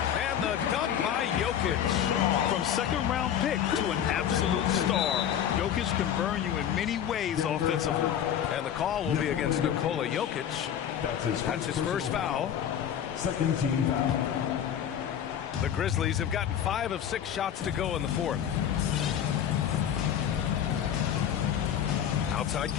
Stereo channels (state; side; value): quieter; right; 9.5 dB